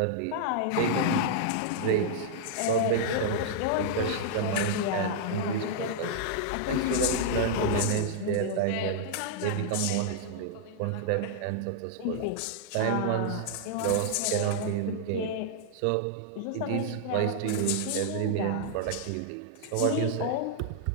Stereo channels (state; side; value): different; both; correlation -0.01